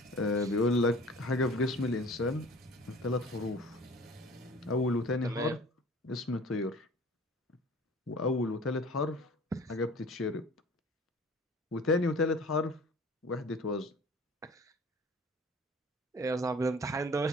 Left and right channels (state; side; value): normal; both; correlation 0.45